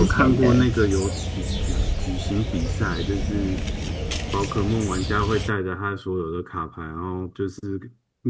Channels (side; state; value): both; identical; correlation 1.00